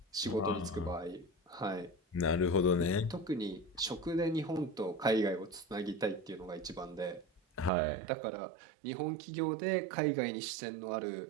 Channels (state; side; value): drops out; left; at 7.7 s